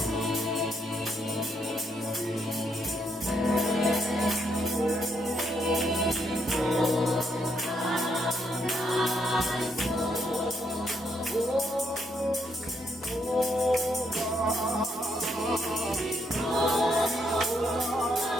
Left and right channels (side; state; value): both; normal; correlation 0.75